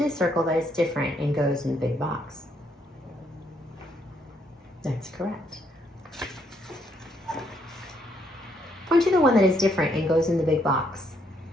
the circle that is different and goes in the big box. That's correct. Point to the one that is different and goes in the big box.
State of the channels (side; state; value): both; normal; correlation 0.72